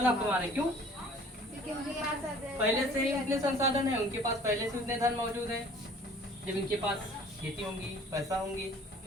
कमा रहे हैं। क्यों? क्योंकि उनके पास पहले से ही उतने संसाधन है, उनके पास पहले से उतने धन मौजूद है। जब इनके पास खेती होंगी, पैसा होंगी,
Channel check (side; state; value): both; normal; correlation 0.51